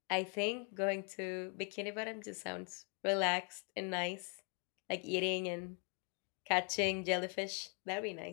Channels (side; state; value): right; quieter; 38.3 dB